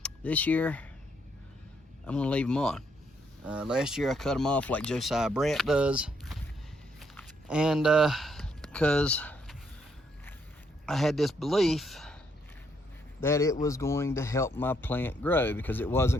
This year I'm gonna leave them on. Last year I cut them off like Josiah Brandt does, and because I had this belief that it was going to help my plant grow, because it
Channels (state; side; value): normal; both; correlation 0.73